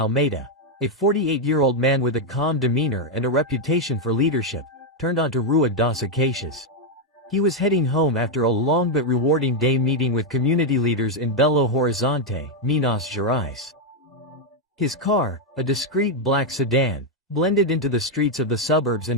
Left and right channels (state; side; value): normal; both; correlation 0.01